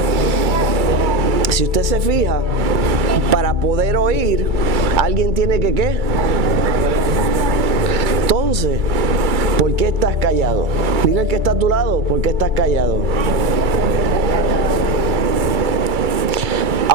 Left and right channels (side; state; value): left; late; 2.3 ms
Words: si usted se fija, para poder oír, alguien tiene que ¿qué? Entonces, ¿por qué estás callado? Dile al que está a tu lado, ¿por qué estás callado?